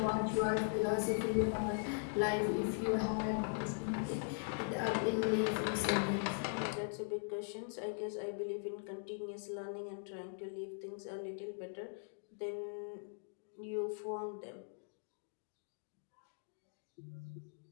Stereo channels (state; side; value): silent; right; digital silence